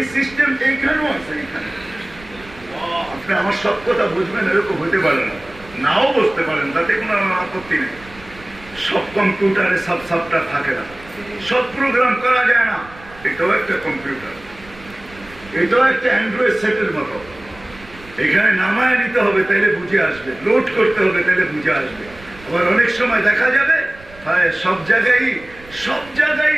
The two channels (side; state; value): right; noise; rumble, 21 dB below the sound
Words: সিস্টেম এইখানেও আছে। এখানে আপনি আমার সব কথা বুঝবেন এরকম হতে পারে না, নাও বসতে পারেন, তাতে কোনো আপত্তি নেই। সব কম্পিউটারে সব সফটওয়্যার থাকে না, সব প্রোগ্রাম করা যায় না। এটাও একটা কম্পিউটার, এটাও একটা অ্যান্ড্রয়েড সেটের মতো। এখানে নামায় নিতে হবে তাইলে বুঝে আসবে, লোড করতে হবে তাইলে বুঝে আসবে। আবার অনেক সময় দেখা যাবে সব জায়গায়